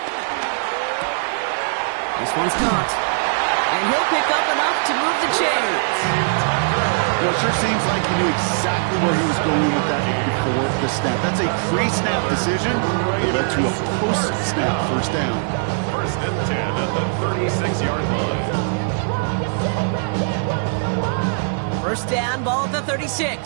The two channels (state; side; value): silent; left; digital silence